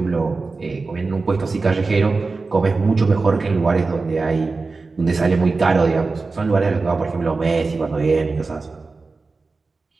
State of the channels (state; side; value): quieter; left; 4.0 dB